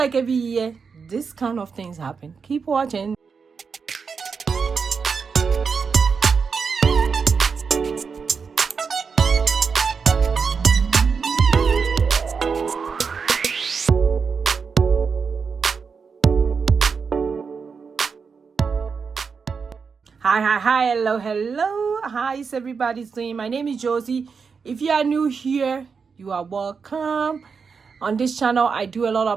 every year this kind of things happen. Keep watching. Hi, hello. How is everybody doing? My name is Josie. If you are new here, you are welcome. On this channel, I do a lot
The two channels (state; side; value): quieter; left; 5.5 dB